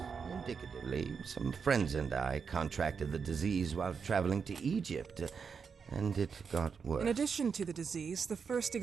indicatively. Some friends and I contracted the disease while traveling to Egypt, and it got worse. In addition to the disease, the first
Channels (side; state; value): left; quieter; 6.0 dB